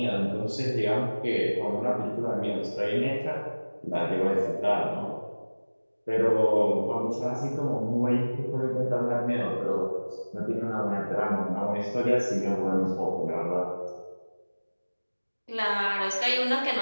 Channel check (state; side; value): inverted; both; correlation -1.00